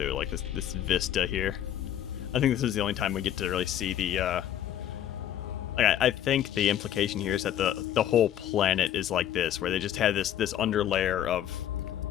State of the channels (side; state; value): right; quieter; 10.9 dB